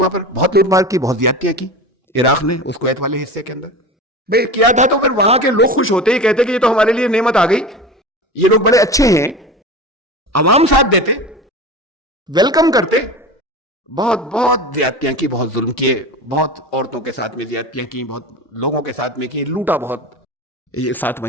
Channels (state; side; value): normal; both; correlation 0.30